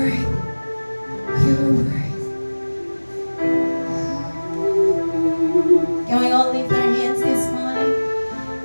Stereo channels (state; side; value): inverted; both; correlation -1.00